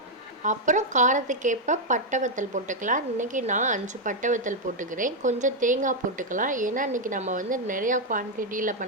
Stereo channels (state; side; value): normal; both; correlation 0.00